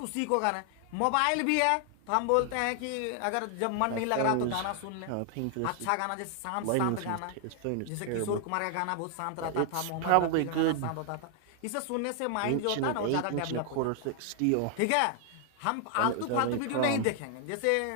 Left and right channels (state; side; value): different; both; correlation 0.00